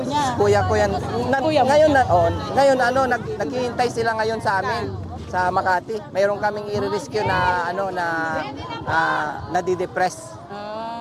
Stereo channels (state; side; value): identical; both; correlation 1.00